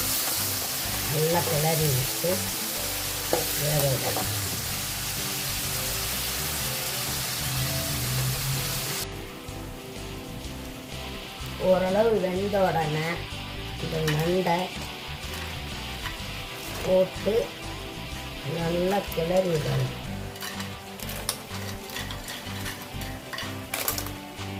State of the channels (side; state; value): both; identical; correlation 1.00